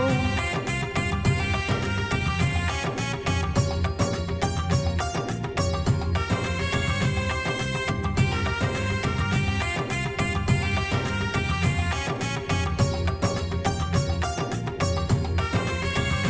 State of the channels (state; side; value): identical; both; correlation 1.00